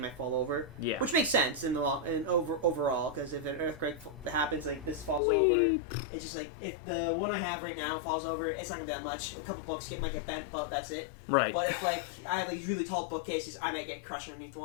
fall over. Yeah. Which makes sense in the overall, because if an earthquake happens, like this falls over, it's just like if the one I have right now falls over, it's not gonna be that much. A couple books might get bent, but that's it. Right. But if like I have these really tall bookcases, I might get crushed underneath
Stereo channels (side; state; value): right; drops out; at 5.2 s